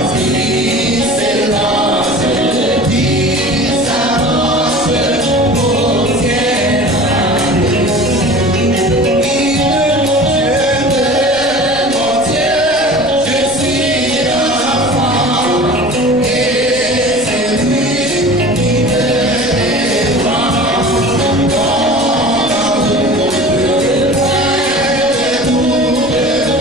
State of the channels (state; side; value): noise; right; rumble, 18 dB below the sound